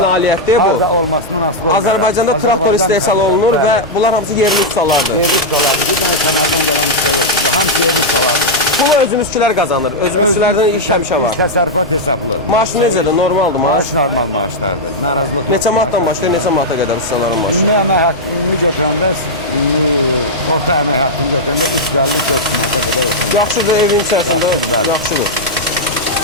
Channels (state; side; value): normal; both; correlation -0.04